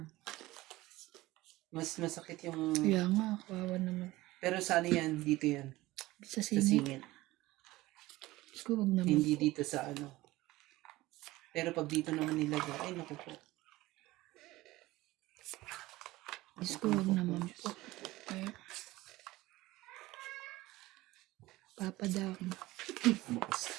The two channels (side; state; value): left; quieter; 18.5 dB